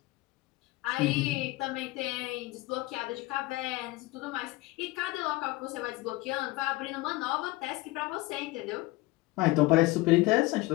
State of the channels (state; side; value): quieter; right; 20.4 dB